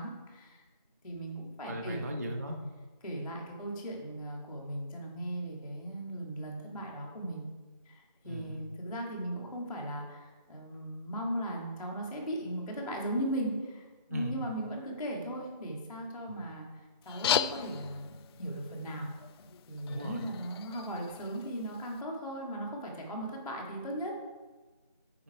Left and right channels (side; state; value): both; inverted; correlation -0.45